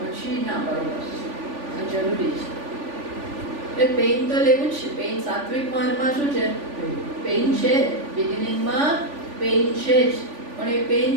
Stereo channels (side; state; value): left; late; 3.5 ms